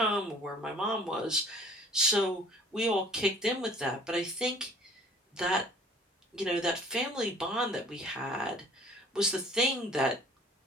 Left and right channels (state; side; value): normal; both; correlation 0.51